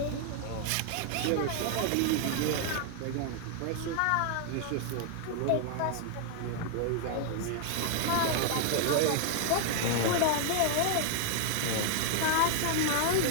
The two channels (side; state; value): both; different; correlation 0.00